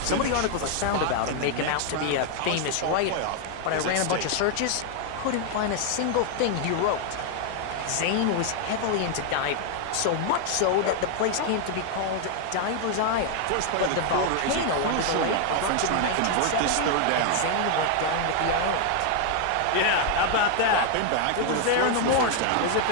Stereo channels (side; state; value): both; different; correlation 0.00